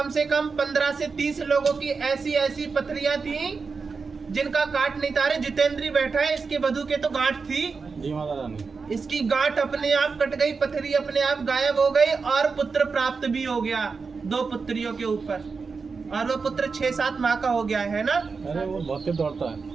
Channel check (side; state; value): left; quieter; 4.9 dB